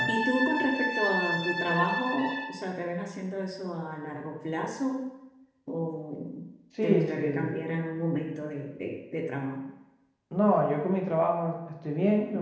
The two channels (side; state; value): both; identical; correlation 1.00